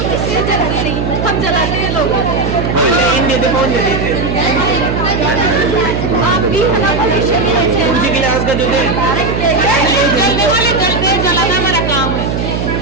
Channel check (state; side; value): noise; right; hum, 2 dB below the sound